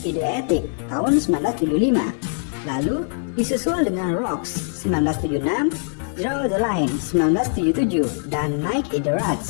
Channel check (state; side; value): silent; right; digital silence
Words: Idiotic tahun 1975. Lalu disusul dengan Rocks 1976, Draw the Line 1977, dan Night in the